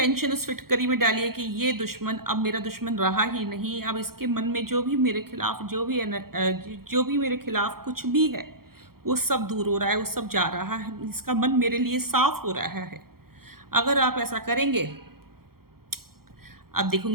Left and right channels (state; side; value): late; left; 0.94 ms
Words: उस फिटकरी में डालिए कि ये दुश्मन अब मेरा दुश्मन रहा ही नहीं, अब इसके मन में जो भी मेरे खिलाफ जो भी मेरे खिलाफ कुछ भी है वो सब दूर हो रहा है, वो सब जा रहा है, इसका मन मेरे लिए साफ हो रहा है। अगर आप ऐसा करेंगे, आप